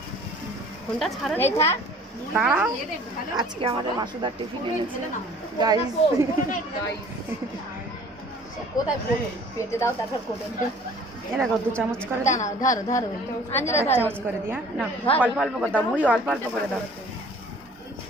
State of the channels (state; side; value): normal; both; correlation 0.51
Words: ফোনটা ছাড়া এই থাক, দাঁড়াও। আজকে আমাদের মাসুদার টিফিন এনেছে গাইস। কোথায় পেটে দাও, তারপর কোটে দাও। এ দেখো 2 চামচ করে দাও, না ধরো ধরো আঞ্জলা 1 চামচ করে দিয়া না, অল্প অল্প করে দাও মুড়ি, অল্প অল্প করে দাও।